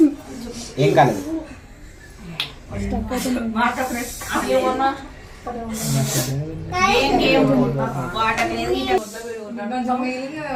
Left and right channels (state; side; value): identical; both; correlation 1.00